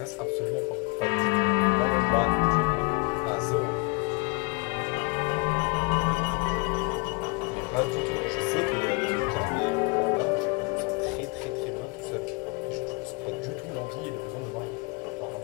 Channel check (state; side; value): quieter; right; 29.1 dB